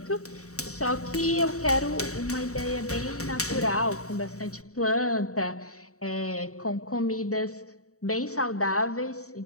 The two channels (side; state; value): right; late; 0.65 ms